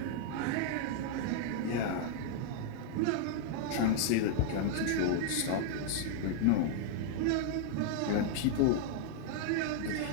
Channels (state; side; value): different; both; correlation 0.00